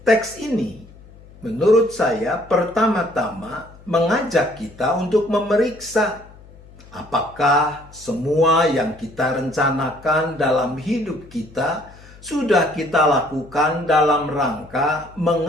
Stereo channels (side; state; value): left; noise; hum, 22 dB below the sound